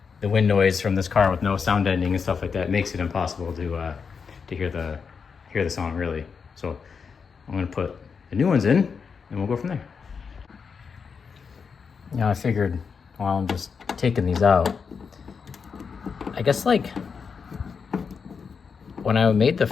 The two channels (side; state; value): right; quieter; 5.8 dB